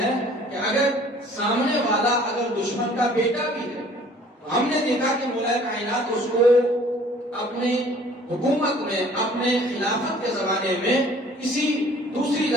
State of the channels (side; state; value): both; normal; correlation 0.53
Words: کہ اگر سامنے والا اگر دشمن کا بیٹا بھی ہے تو ہم نے دیکھا کہ مولا کائنات اس کو اپنے حکومت میں، اپنے خلافت کے زمانے میں کسی دوسری